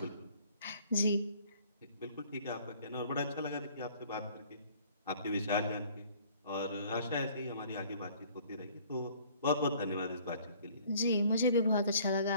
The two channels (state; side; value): inverted; both; correlation -0.55